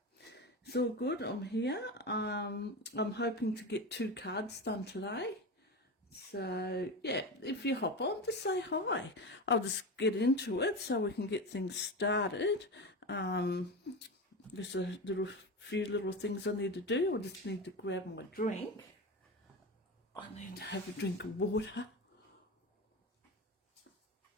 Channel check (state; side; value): normal; both; correlation 0.23